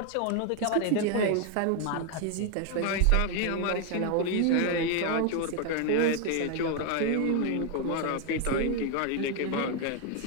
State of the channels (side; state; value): both; different; correlation 0.01